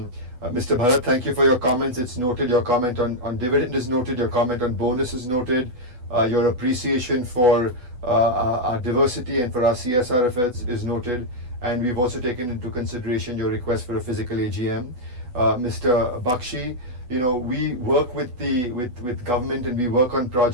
Bharat, thank you for your comments. It's noted. Your comment on dividend is noted. Your comment on bonus is noted. Your appreciation for our diversity and for our CSR efforts is noted. And we've also taken into consideration your request for a physical AGM. Mr. Bakshi, you know, we work with government and we work on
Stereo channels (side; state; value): left; late; 8.1 ms